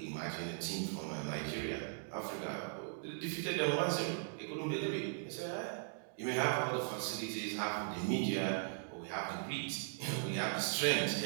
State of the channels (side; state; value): left; silent; digital silence